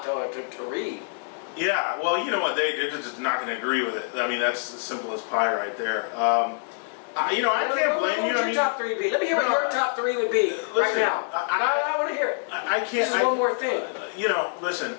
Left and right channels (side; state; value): right; silent; digital silence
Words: to read. Yeah, well, you know what? They're just not going to agree with it. I mean, that's as simple as pie right there. You know, I can't blame you. What would your top 3 be? Let me hear what your top 3 would be right Listen, now. I I want to hear it. I can't. This is one more thing. You know,